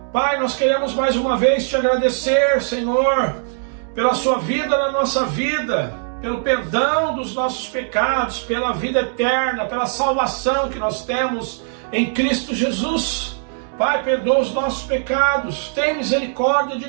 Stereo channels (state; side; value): silent; left; digital silence